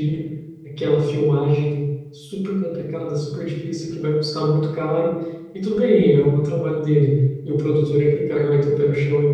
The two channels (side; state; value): both; identical; correlation 1.00